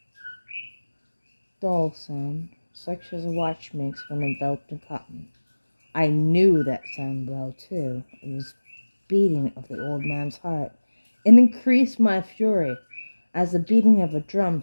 dull sound, such as a watch makes when enveloped in cotton. I knew that sound well, too. It was beating of the old man's heart. It increased my fury, as the beating of a drum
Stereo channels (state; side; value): inverted; both; correlation -1.00